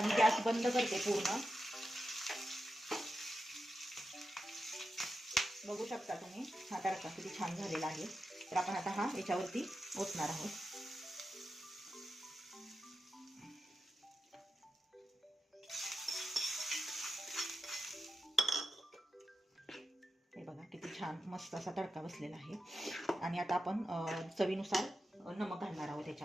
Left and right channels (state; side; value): normal; both; correlation 0.89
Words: मी गॅस बंद करते पूर्ण. बघू शकता तुम्ही हा तडका किती छान झालेला आहे. तर आपण आता हा याच्यावरती ओतणार आहोत. हे बघा किती छान मस्त असा तडका बसलेला आहे. आणि आता आपण चवीनुसार नमक घालणार आहोत